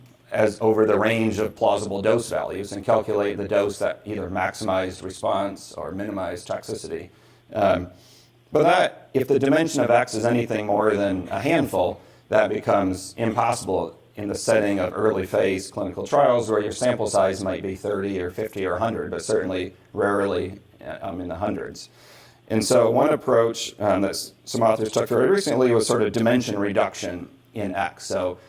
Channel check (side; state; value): both; identical; correlation 1.00